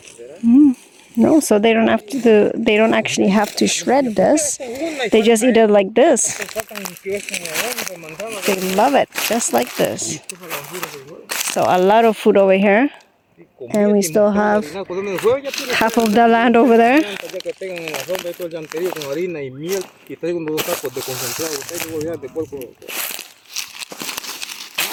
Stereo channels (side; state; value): both; identical; correlation 1.00